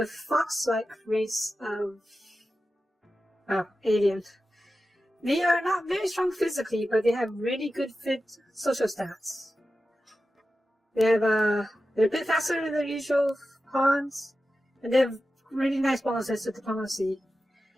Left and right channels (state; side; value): normal; both; correlation 0.93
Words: fox-like race of aliens. They are not very strong physically, but they have really good fit social stats. They're a bit faster than their usual pawns, and they have really nice bonuses to diplomacy.